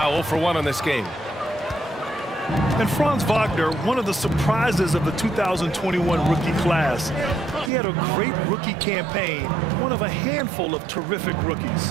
0 for 1 on this game. And Franz Wagner, one of the surprises of the 2021 rookie class. He had a great rookie campaign, one of a handful of terrific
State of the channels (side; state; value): left; drops out; at 7.7 s